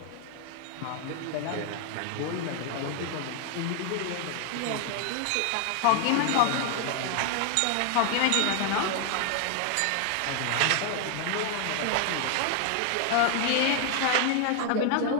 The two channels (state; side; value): different; both; correlation 0.00